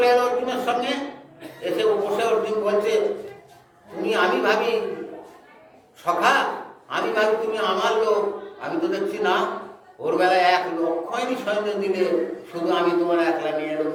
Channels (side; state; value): both; identical; correlation 1.00